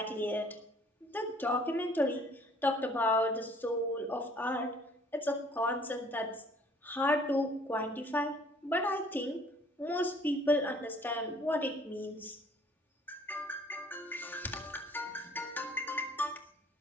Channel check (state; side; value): normal; both; correlation 0.57